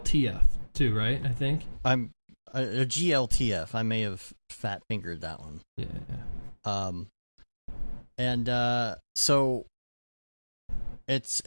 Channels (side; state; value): both; inverted; correlation -1.00